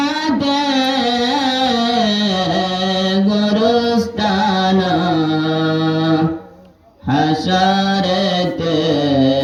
ते गुरुस्थान हशरते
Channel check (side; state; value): both; identical; correlation 1.00